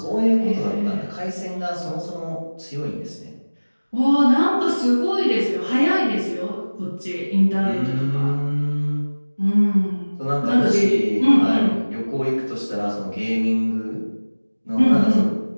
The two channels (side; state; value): both; inverted; correlation -1.00